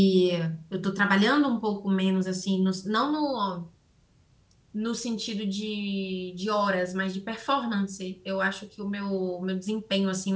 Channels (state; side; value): identical; both; correlation 1.00